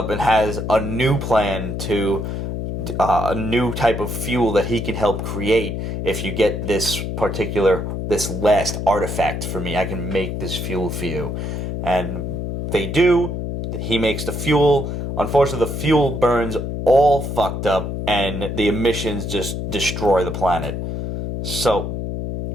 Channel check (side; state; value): left; noise; hum, 4 dB below the sound